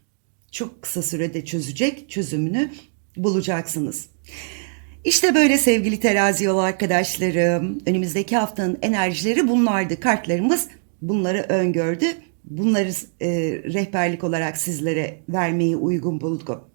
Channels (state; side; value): silent; left; digital silence